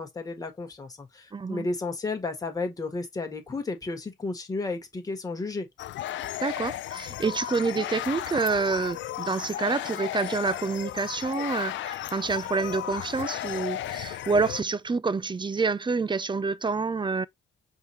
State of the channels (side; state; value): both; normal; correlation 0.44